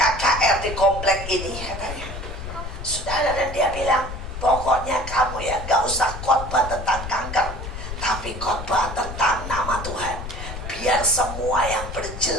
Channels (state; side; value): noise; left; rumble, 8 dB below the sound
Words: di komplek ini, katanya. Saudara, dan dia bilang, pokoknya kamu ya gak usah khotbah tentang kanker, tapi khotbah tentang nama Tuhan. Biar semua yang